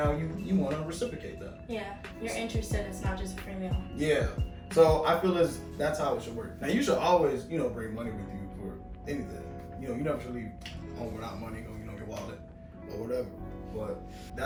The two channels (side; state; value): both; identical; correlation 1.00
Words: you want to reciprocate that. Yeah, you're interested. It's not just a free meal. Yeah. So I feel as that's how it should work. Now you should always, you know, bring money with you for anything. You know, you never should leave home without money, or you know, your wallet or whatever. But